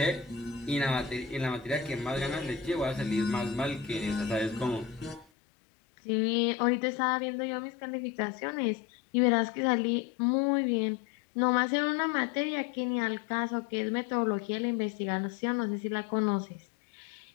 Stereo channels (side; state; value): right; drops out; at 5.2 s